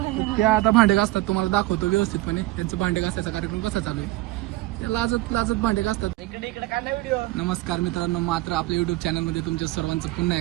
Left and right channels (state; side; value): quieter; left; 18.6 dB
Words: तर त्या आता भांडे घासतात, तुम्हाला दाखवतो व्यवस्थितपणे त्यांचं भांडे घासायचा कार्यक्रम कसा चालू आहे. ते लाजत लाजत भांडे घासतात. नमस्कार मित्रांनो, मात्र आपल्या युट्यूब चॅनलमध्ये तुमच्या सर्वांचं पुन्हा